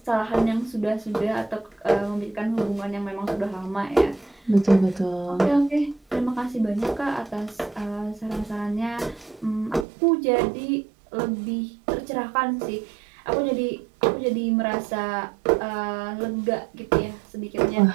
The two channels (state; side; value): drops out; left; at 9.9 s